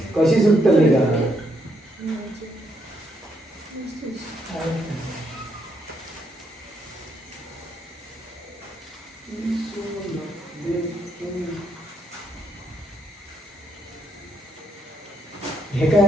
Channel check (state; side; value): normal; both; correlation 0.74